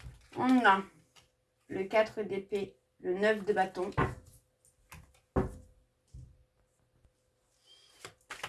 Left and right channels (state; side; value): identical; both; correlation 1.00